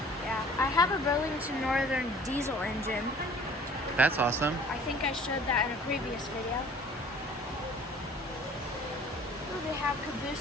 Yeah, I have a Burlington Northern diesel engine. That's awesome. I think I showed that in a previous video. Ooh, they have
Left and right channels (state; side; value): normal; both; correlation 0.50